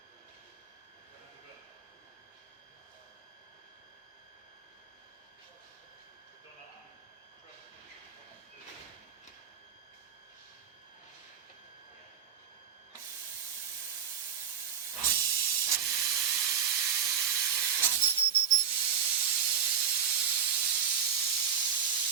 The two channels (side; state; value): left; quieter; 8.0 dB